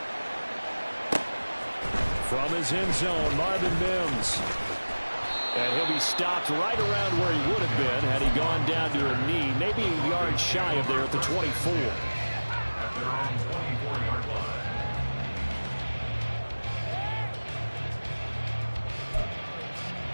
From his end zone, Marvin Mims. And he'll be stopped right around where he would have been had he gone down to a knee, maybe a yard shy of there at the 24.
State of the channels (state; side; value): inverted; both; correlation -1.00